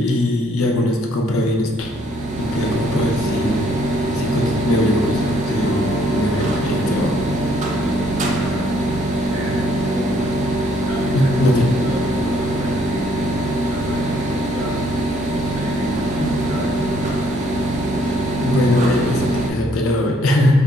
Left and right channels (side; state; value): both; normal; correlation 0.66